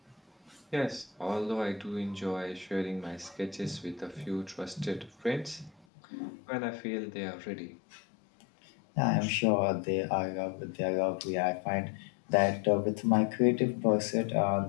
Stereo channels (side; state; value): right; drops out; at 5.9 s